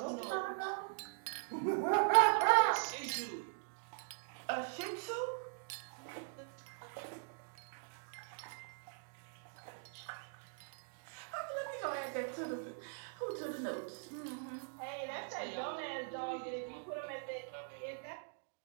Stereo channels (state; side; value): silent; left; digital silence